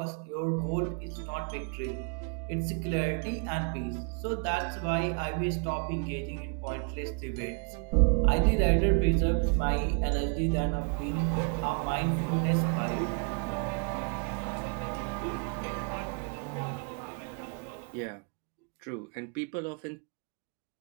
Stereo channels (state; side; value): quieter; left; 38.1 dB